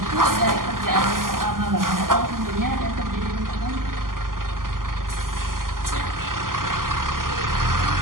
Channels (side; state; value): left; late; 0.91 ms